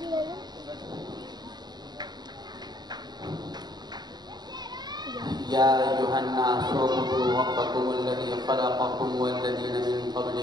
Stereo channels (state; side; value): late; left; 0.20 ms